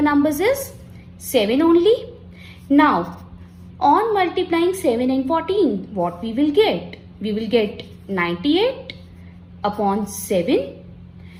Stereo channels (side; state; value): both; identical; correlation 1.00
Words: numbers is 7 only. Now, on multiplying 7 and 14, what we will get? We will get 98 upon 7.